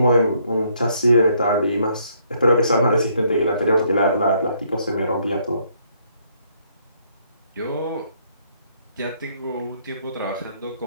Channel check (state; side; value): inverted; both; correlation -0.69